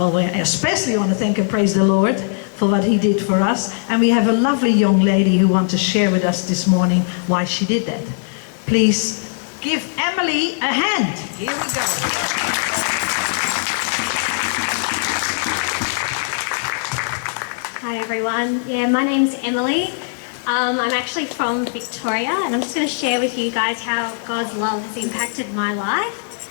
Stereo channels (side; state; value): right; silent; digital silence